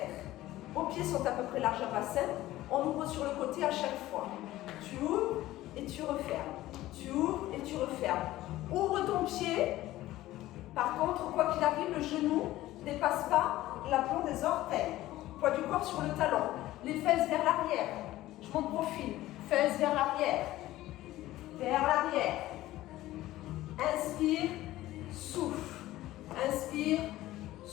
Vos pieds sont à peu près large à bassin. On ouvre sur le côté à chaque fois. Tu ouvres et tu refermes. Tu ouvres et tu refermes. Ouvre ton pied. Par contre, quoi qu'il arrive, le genou ne dépasse pas l'aplomb des orteils. Poids du corps sur le talon. Les fesses vers l'arrière. Je monte profil. Fesses vers l'arrière. Vers l'arrière. Inspire, souffle. Inspire,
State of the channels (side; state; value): right; quieter; 15.9 dB